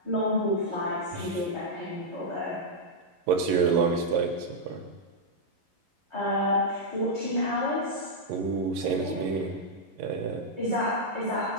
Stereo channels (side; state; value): left; late; 11 ms